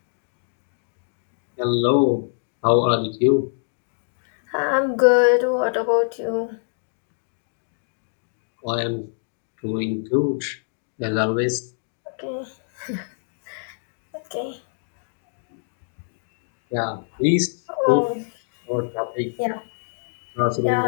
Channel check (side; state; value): right; silent; digital silence